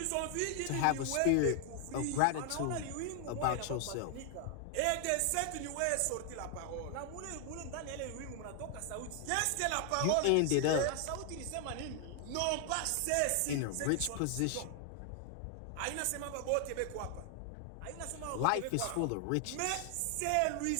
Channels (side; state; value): both; different; correlation 0.00